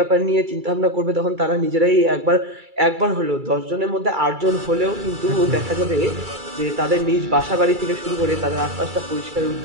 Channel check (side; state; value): left; late; 2.3 ms